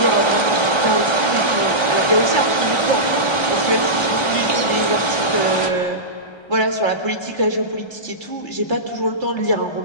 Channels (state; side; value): late; right; 1.3 ms